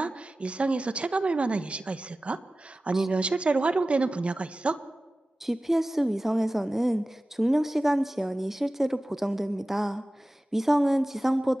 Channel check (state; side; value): normal; both; correlation 0.96